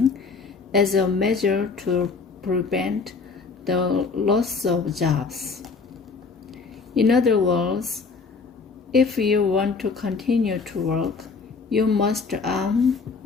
as a measure to prevent the loss of jobs. In other words, if you want to continue to work, you must arm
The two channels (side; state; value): right; quieter; 4.7 dB